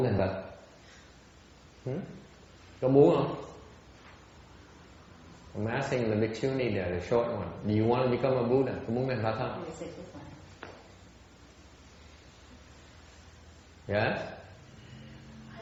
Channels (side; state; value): both; identical; correlation 1.00